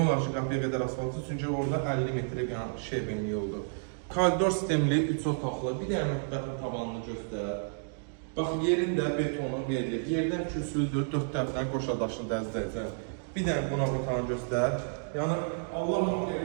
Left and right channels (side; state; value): left; silent; digital silence